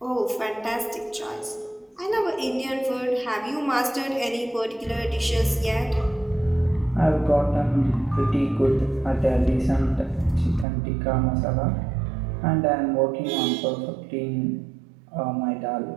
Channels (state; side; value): drops out; left; at 10.7 s